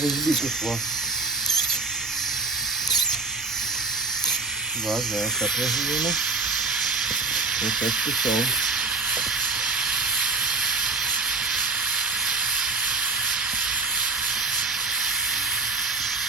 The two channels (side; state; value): left; quieter; 3.7 dB